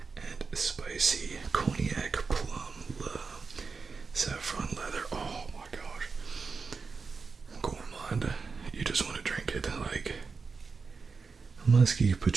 and spicy Cognac Plum saffron leather. Oh my gosh. Gourmand. You just want to drink it like musky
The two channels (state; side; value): quieter; left; 4.8 dB